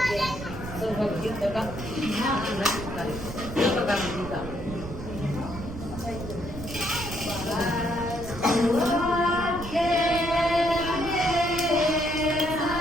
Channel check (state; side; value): noise; right; rumble, 10 dB below the sound